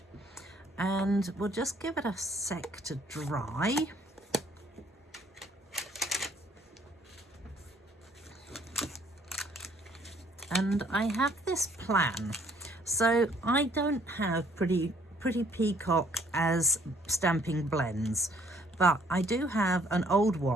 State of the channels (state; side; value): normal; both; correlation 0.63